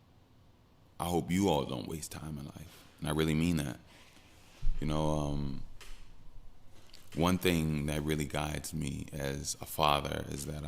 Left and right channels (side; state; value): both; identical; correlation 1.00